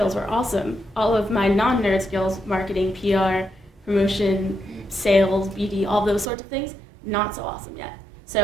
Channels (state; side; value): drops out; left; at 6.3 s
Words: were awesome. All of my non-nerd skills, marketing, PR, promotion, sales, BD, all those sorts of things, not so awesome yet.